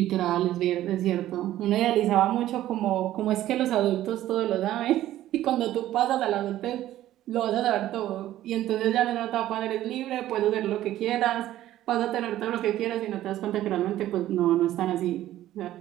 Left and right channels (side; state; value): left; quieter; 13.6 dB